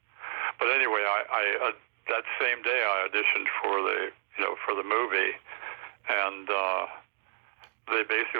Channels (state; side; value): silent; left; digital silence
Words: But anyway, I that same day I auditioned for the movie, and they